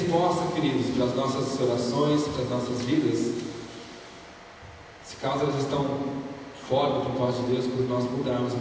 queridos, para as nossas orações, para as nossas vidas, se caso elas estão fora do propósito de Deus, quando nós mudarmos a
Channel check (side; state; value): both; identical; correlation 1.00